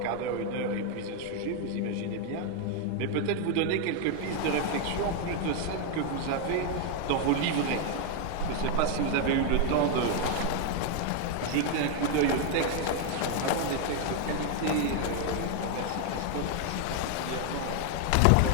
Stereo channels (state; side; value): different; both; correlation 0.00